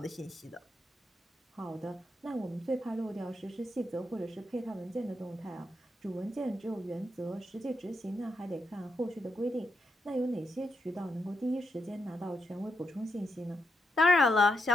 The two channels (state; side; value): normal; both; correlation 0.82